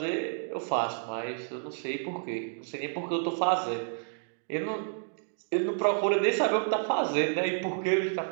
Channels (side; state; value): left; silent; digital silence